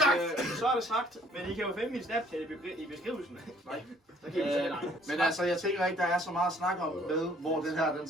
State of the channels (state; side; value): normal; both; correlation 0.60